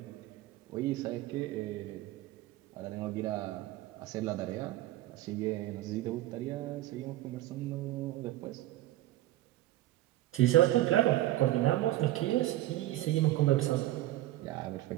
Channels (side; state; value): left; quieter; 15.5 dB